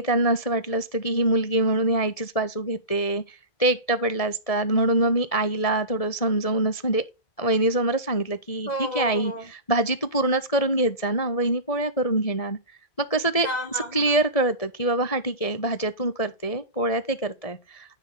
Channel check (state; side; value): late; right; 1.7 ms